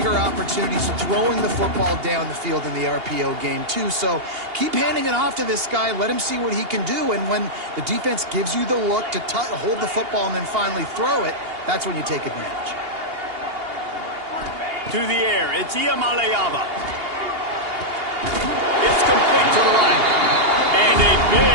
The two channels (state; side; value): late; left; 2.8 ms